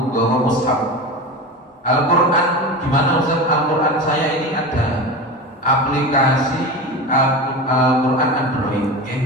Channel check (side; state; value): both; normal; correlation 0.26